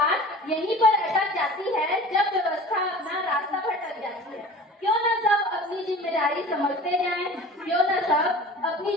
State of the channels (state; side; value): normal; both; correlation 0.40